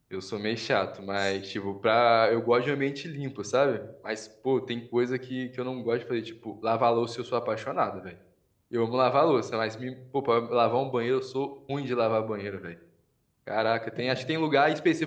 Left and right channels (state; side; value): identical; both; correlation 1.00